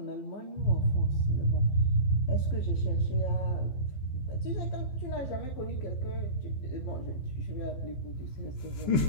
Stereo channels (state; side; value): late; right; 15 ms